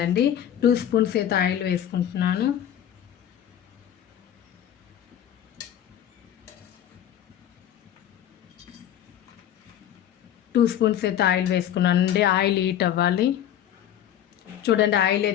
2 స్పూన్స్ అయితే ఆయిల్ వేసుకుంటున్నాను. 2 స్పూన్స్ అయితే ఆయిల్ వేసుకున్నానండి. ఆయిల్ హీట్ అవ్వాలి. చూడండి, ఆయిల్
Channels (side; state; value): right; quieter; 10.7 dB